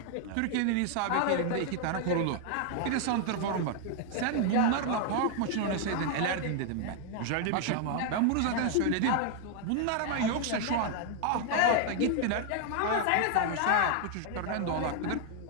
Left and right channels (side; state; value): both; different; correlation 0.00